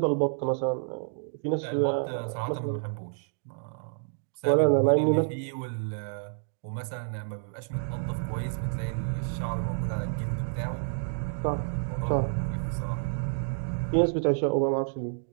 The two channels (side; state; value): left; silent; digital silence